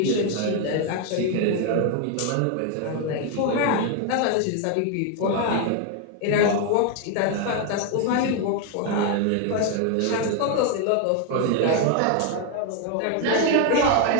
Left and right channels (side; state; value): both; different; correlation 0.01